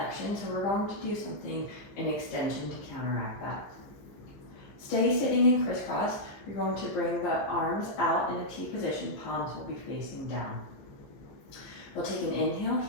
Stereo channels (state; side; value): late; right; 15 ms